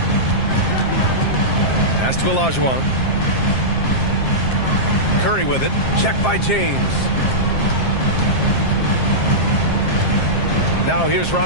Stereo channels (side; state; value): right; late; 7.6 ms